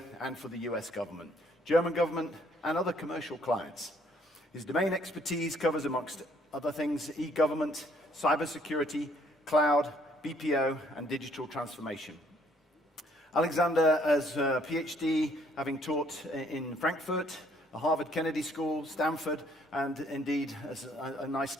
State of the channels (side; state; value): both; normal; correlation 0.64